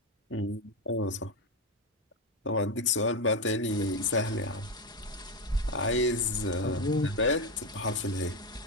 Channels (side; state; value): both; normal; correlation 0.12